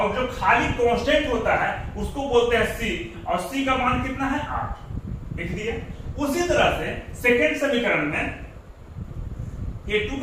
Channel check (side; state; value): both; identical; correlation 1.00